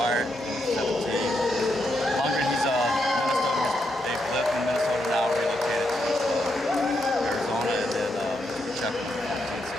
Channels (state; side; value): normal; both; correlation 0.81